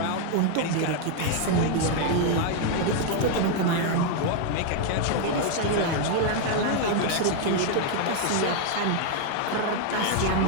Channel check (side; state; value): both; different; correlation 0.00